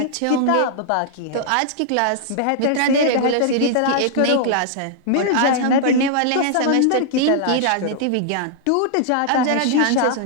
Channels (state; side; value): different; both; correlation -0.01